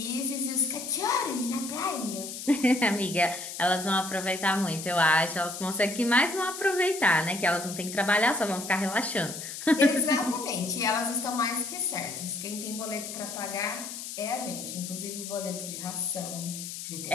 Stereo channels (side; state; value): left; noise; hiss, 8 dB below the sound